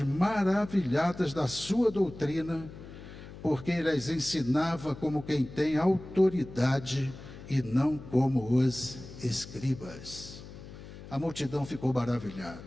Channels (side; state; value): left; noise; hum, 15 dB below the sound